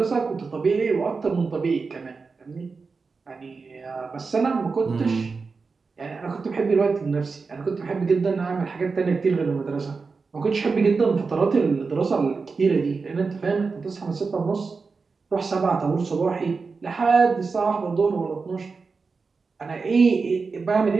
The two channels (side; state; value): left; quieter; 4.6 dB